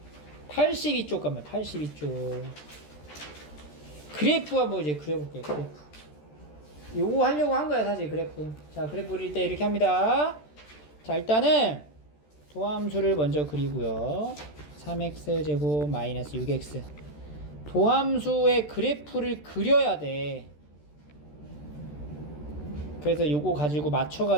82쪽 가면 82쪽 그래프 한번 이제 그려볼게요. 그래프 요거 하려고 한 거야 사실. 그래프. 자, 그래프 그릴 때 이렇게 합니다. 자, 일단은 도함수를 먼저 그리고요. 3x제곱 마이너스 6x. 도함수의 그래프를 그려야 돼. 그래서 요거 가지고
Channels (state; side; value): late; right; 13 ms